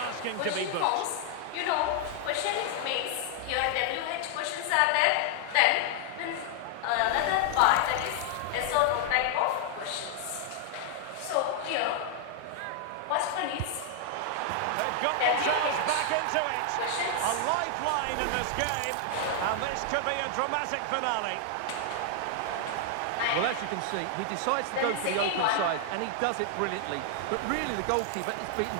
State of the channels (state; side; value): different; both; correlation 0.00